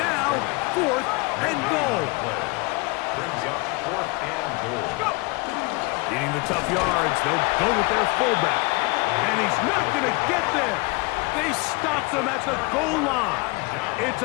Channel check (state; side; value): quieter; right; 26.8 dB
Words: 4th and goal. Brings up 4th and goal. Needing the tough yards, they'll go with their fullback. And he's not going to get there. They stopped him at the goal line. It's